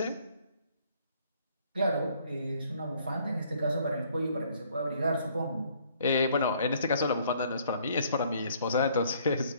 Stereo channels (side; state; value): both; inverted; correlation -0.62